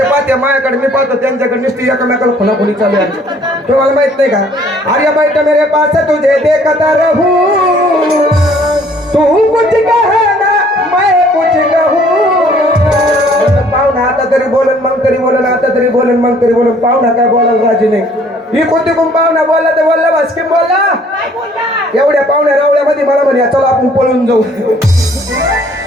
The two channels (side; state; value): both; normal; correlation 0.59